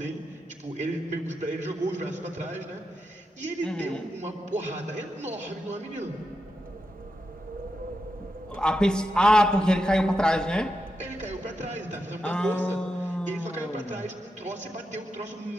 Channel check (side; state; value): both; normal; correlation 0.86